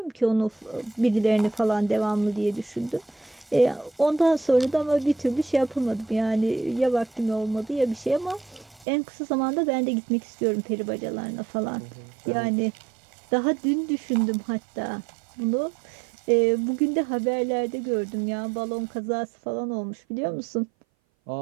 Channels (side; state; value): left; drops out; at 8.8 s